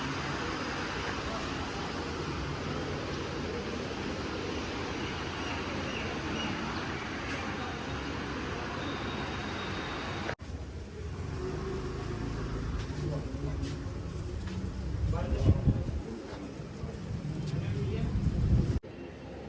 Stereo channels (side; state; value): both; identical; correlation 1.00